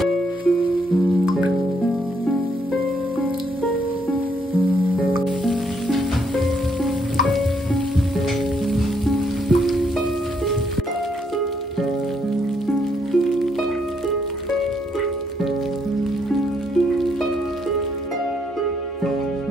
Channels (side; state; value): both; normal; correlation 0.73